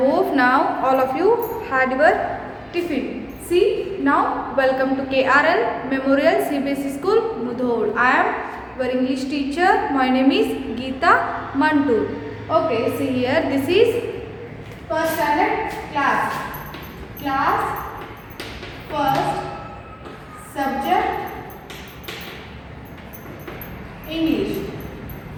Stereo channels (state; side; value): identical; both; correlation 1.00